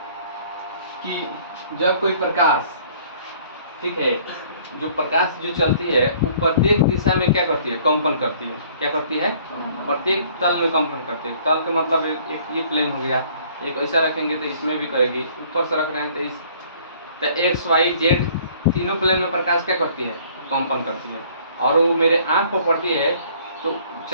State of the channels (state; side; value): inverted; both; correlation -0.57